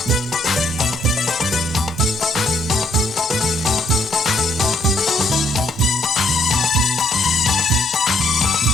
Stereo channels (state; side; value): normal; both; correlation 0.69